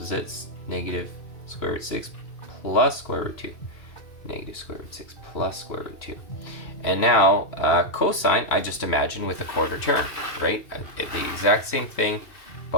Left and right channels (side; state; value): right; late; 2.8 ms